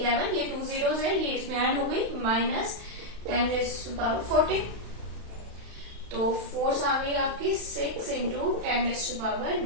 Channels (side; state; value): left; late; 31 ms